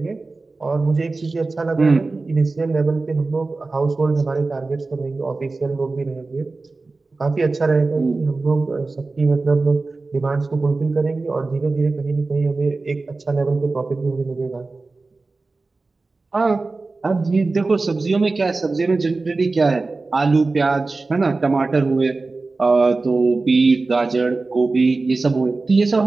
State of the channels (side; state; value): left; quieter; 3.6 dB